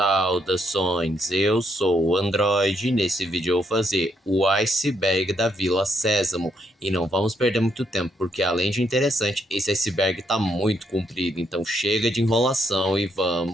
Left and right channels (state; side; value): normal; both; correlation 0.75